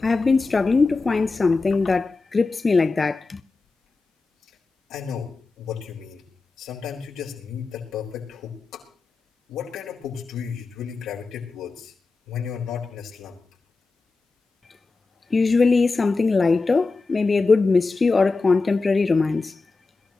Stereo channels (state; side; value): quieter; right; 3.9 dB